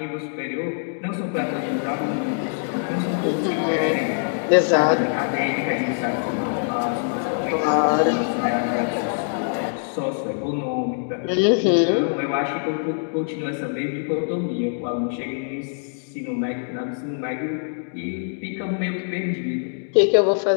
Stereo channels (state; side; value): silent; right; digital silence